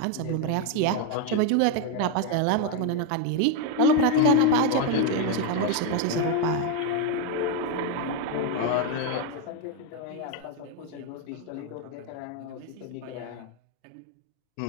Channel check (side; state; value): both; different; correlation 0.02